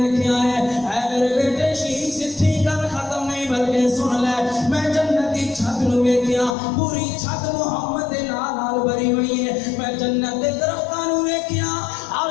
ہے۔ اے میرے بیٹے شیخ ستھی گل ختم نہیں بلکہ سن لے، میں جنت دی چھت نو ویکھیا، پوری چھت محمد دے نام نال بھری ہوئی ہے۔ میں جنت دے درختاں نو ویکھیا، ہر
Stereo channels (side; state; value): right; drops out; at 6.6 s